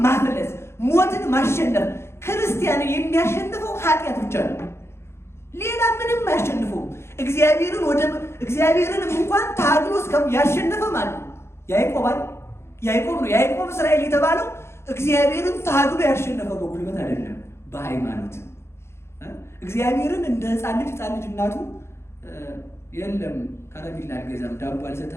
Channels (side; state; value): right; late; 0.12 ms